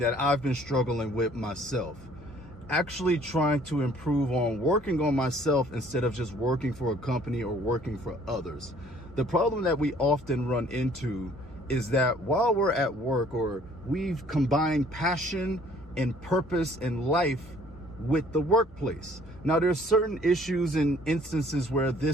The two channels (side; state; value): both; normal; correlation 0.57